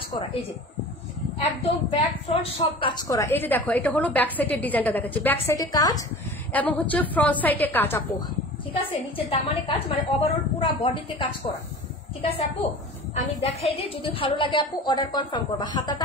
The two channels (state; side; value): normal; both; correlation 0.39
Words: করা। এই যে একদম ব্যাক ফ্রন্ট সব কাজ করা। এই যে দেখো এটা হলো ব্যাক সাইডের ডিজাইনটা দেখাচ্ছি, ব্যাক সাইডে কাজ এবং হচ্ছে ফ্রন্ট সাইডে কাজ আপু। ঠিক আছে, নিচের দামানে কাজ, মানে ওভারঅল পুরো বডিতে কাজ করা। ঠিক আছে আপু, আমি দেখাই দিই, যদি ভালো লাগে আপু অর্ডার কনফার্ম করবা।